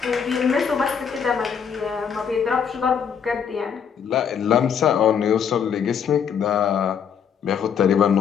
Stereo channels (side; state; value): right; quieter; 7.4 dB